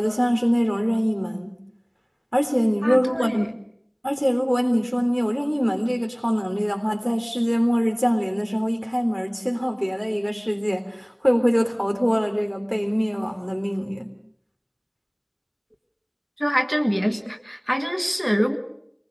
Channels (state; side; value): identical; both; correlation 1.00